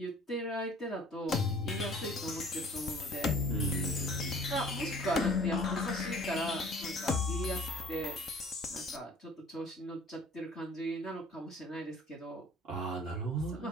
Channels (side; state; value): both; normal; correlation 0.50